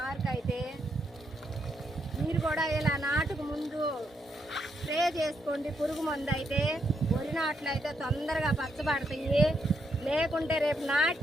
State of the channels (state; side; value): normal; both; correlation 0.79